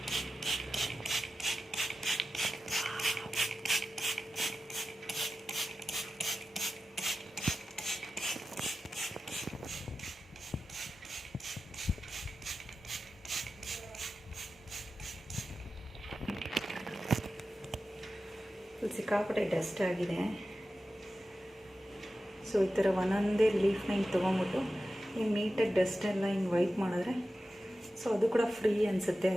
ಸಿಕ್ಕಾಪಟ್ಟೆ ಡಸ್ಟ್ ಆಗಿದೆ. ಸೊ ಈ ಥರ ಒಂದೊಂದೇ ಲೀಫ್ನ ಹಿಂಗೆ ತೊಗೊಂಬಿಟ್ಟು ಹಿಂಗೆ ನೀಟಾಗಿ ಡಸ್ಟ್ ಎಲ್ಲ ಹಿಂಗೆ ವೈಪ್ ಮಾಡಿದ್ರೆ ಸೊ ಅದು ಕೂಡ ಫ್ರೀ ಅನಿಸುತ್ತೆ.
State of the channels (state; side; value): normal; both; correlation 0.93